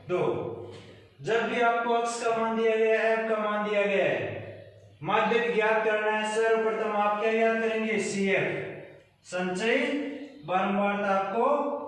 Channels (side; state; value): both; identical; correlation 1.00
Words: 2। जब भी आपको x का मान दिया गया है, f का मान दिया गया है, माध्य ज्ञात करना है, सर्वप्रथम आप क्या ज्ञात करेंगे CF, संचयी बारंबारता आपको